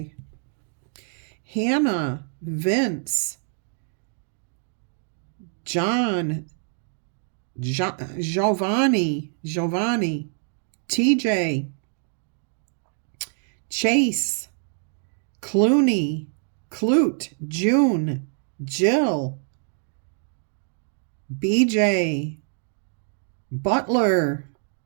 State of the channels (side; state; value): left; silent; 61 dB below the other